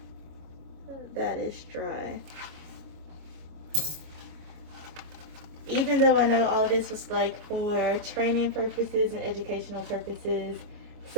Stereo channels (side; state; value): left; late; 26 ms